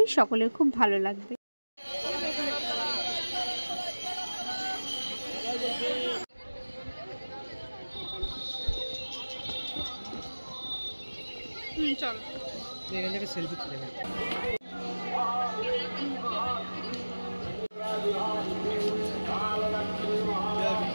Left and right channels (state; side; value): inverted; both; correlation -1.00